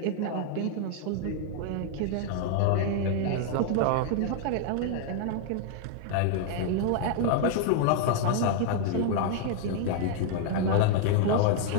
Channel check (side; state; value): both; different; correlation 0.00